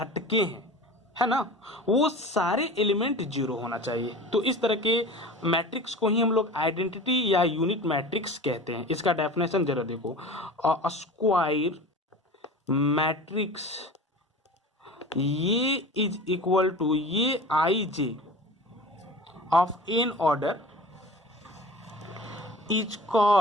हैं, है ना, वो सारे एलिमेंट जीरो होना चाहिए। तो इस तरह के मैट्रिक्स को ही हम लोग आइडेंटिटी या यूनिट मैट्रिक्स कहते हैं। इसका डेफिनेशन जरा देखो, स्क्वायर मैट्रिक्स ये इज इक्वल टू ये i j of n order is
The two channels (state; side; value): normal; both; correlation 0.37